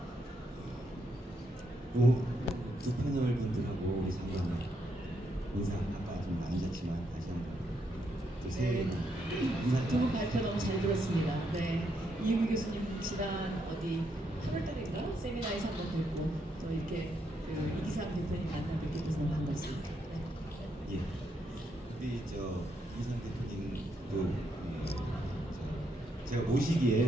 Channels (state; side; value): normal; both; correlation 0.78